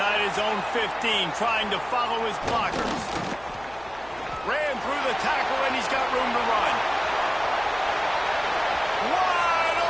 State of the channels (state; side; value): noise; left; hum, 23 dB below the sound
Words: his own 15, trying to follow his blockers. Ran through the tackle, and he's got room to run. Wide